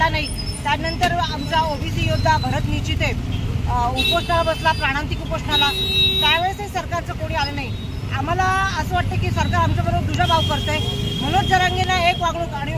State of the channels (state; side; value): identical; both; correlation 1.00